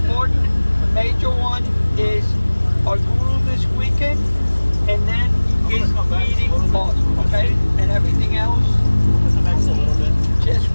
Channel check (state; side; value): inverted; both; correlation -1.00